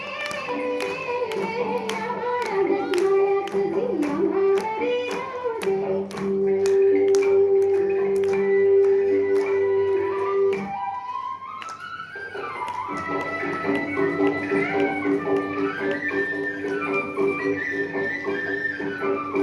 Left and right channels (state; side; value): identical; both; correlation 1.00